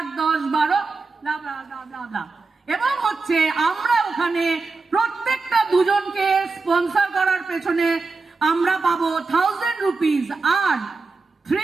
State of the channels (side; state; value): left; quieter; 4.0 dB